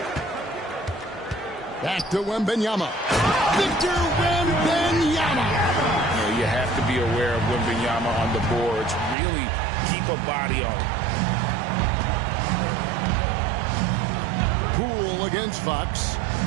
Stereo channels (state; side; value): drops out; left; at 9.2 s